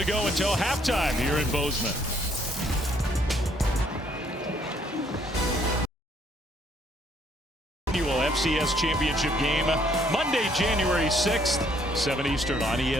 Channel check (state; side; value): normal; both; correlation 0.66